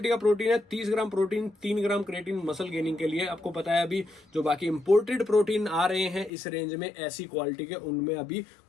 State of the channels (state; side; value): drops out; right; at 6.3 s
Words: का प्रोटीन है, 30 ग्राम प्रोटीन 3 ग्राम क्रेटीन मसल गेनिंग के लिए। आपको पता है अभी जो बाकी इंपोर्टेड प्रोटीन आ रहे हैं इस रेंज में ऐसी क्वालिटी के, उनमें अभी